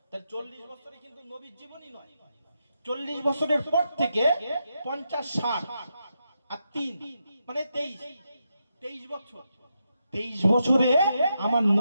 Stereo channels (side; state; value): both; inverted; correlation -0.84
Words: তাহলে 40 বছরে কিন্তু নবীর জীবনই নয়, 40 বছরের পর থেকে 50 60 আর 3 মানে 23 বছর। 23 বছরে আমার